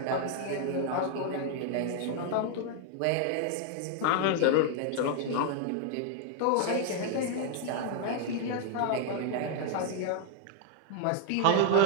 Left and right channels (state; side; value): different; both; correlation 0.00